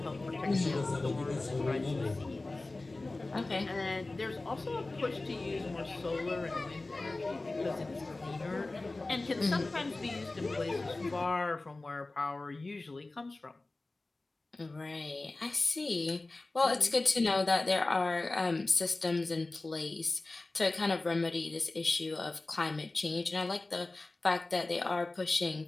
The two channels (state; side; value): quieter; right; 3.1 dB